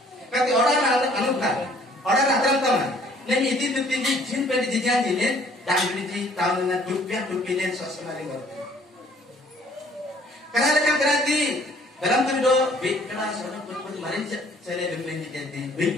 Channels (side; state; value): both; normal; correlation 0.58